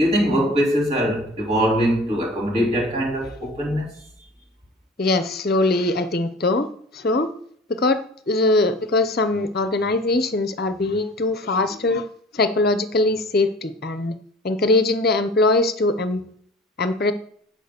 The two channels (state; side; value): normal; both; correlation 0.42